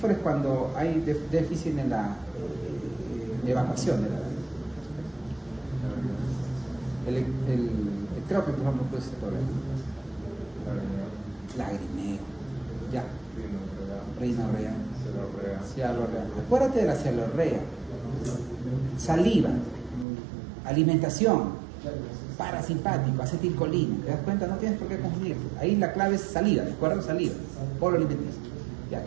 es cuando hay déficit en la evacuación de la lágrima. El ectrópico, por ejemplo, puede ser problema. Lagrimeo. Ya. Rinorrea. Cialorrea. Acuérdate de la cialorrea. Saliva. Alimentación. Parasimpático. Acetilcolina. ¿Te das cuenta? No tienes por qué confundir. Ahí la clave es salida. ¿De acuerdo? Saliva. Polo alimenticio. Ya.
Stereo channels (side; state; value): left; drops out; at 20.1 s